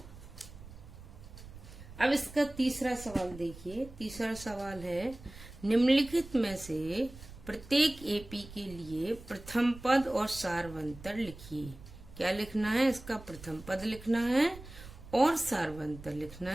अब इसका तीसरा सवाल देखिए। तीसरा सवाल है, निम्नलिखित में से प्रत्येक एपी के लिए प्रथम पद और सारवंतर लिखिए। क्या लिखना है? इसका प्रथम पद लिखना है और सारवंतर लिखना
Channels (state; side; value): noise; right; rumble, 17 dB below the sound